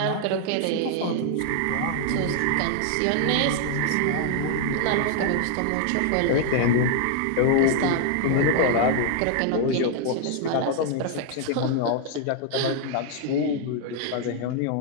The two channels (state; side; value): different; both; correlation 0.00